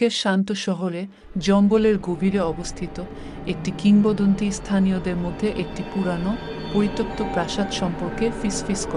শান্ত শহরে জঙ্গলের গভীরে অবস্থিত একটি কিংবদন্তি স্থানীয়দের মধ্যে একটি পুরানো পরিত্যক্ত প্রাসাদ সম্পর্কে ফিসফিস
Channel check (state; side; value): identical; both; correlation 1.00